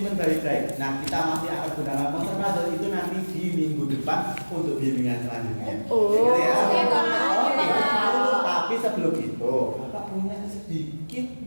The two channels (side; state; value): both; inverted; correlation -1.00